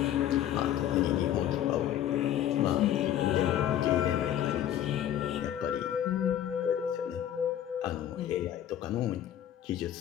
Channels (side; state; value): right; quieter; 11.2 dB